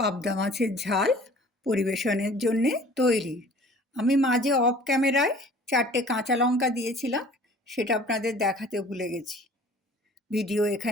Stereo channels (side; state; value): both; normal; correlation 0.49